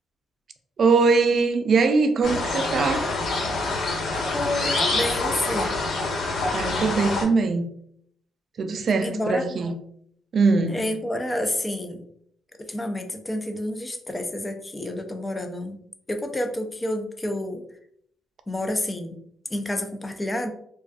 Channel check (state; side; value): normal; both; correlation 0.77